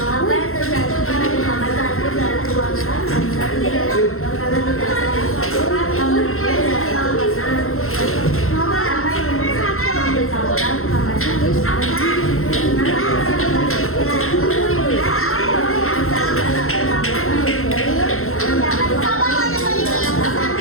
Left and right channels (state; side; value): late; right; 0.62 ms